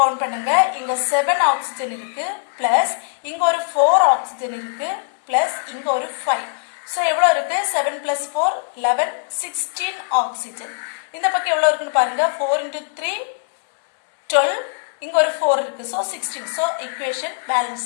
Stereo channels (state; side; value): silent; right; digital silence